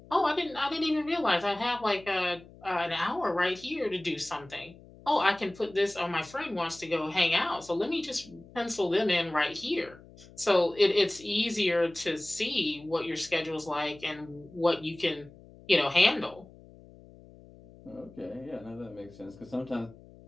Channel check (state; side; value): noise; left; hum, 22 dB below the sound